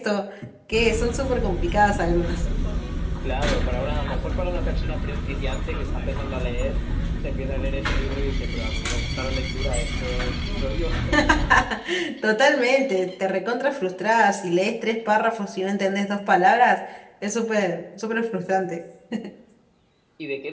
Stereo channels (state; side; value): identical; both; correlation 1.00